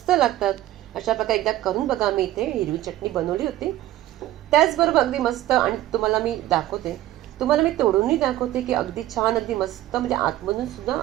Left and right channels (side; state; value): left; quieter; 14.7 dB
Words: लागतात. अशा प्रकारे एकदा करून बघा. मी इथे हिरवी चटणी बनवली होती. त्याचबरोबर अगदी मस्त, आणि तुम्हाला मी दाखवते, तुम्हाला मी तोडूनही दाखवते की अगदी छान, अगदी मस्त, म्हणजे आतमधून सुद्धा